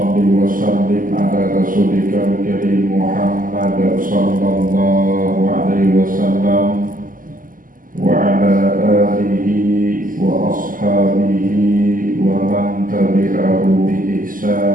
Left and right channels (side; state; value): left; late; 0.40 ms